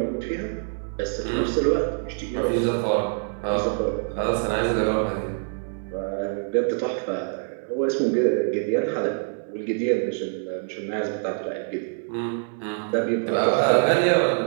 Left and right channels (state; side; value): silent; left; 62 dB below the other